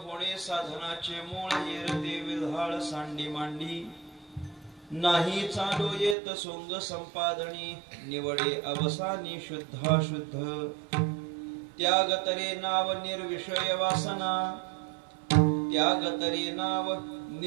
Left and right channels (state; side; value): drops out; left; at 6.2 s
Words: साधनाचे मूळ. येरते विल्हाळ सांडी मांडी, नाही चालो येत सोंग संपादनी. निवडे अवसानी शुद्धाशुद्ध, त्याग तरे नाव निर्विषय वासना. त्याग तरे नाव